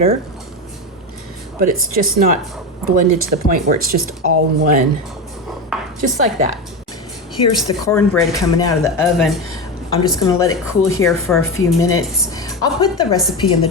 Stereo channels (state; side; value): normal; both; correlation 0.19